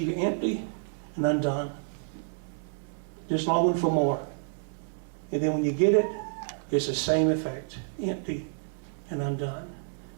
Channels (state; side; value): silent; left; 58 dB below the other